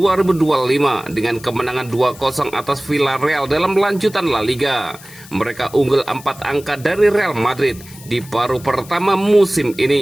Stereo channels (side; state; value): left; noise; hiss, 20 dB below the sound